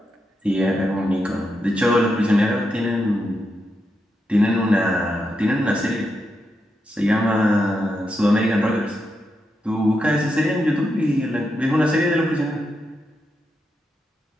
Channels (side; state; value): both; normal; correlation 0.85